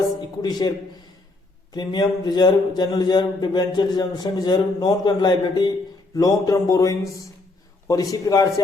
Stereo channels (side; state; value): right; quieter; 3.1 dB